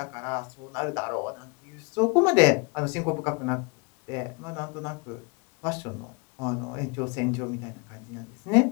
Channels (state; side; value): quieter; right; 31.0 dB